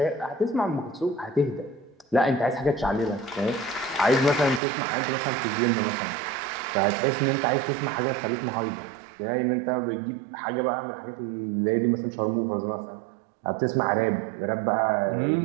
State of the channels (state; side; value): drops out; left; at 4.6 s